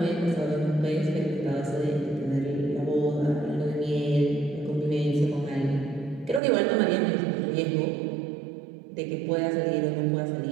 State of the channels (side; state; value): left; drops out; at 6.4 s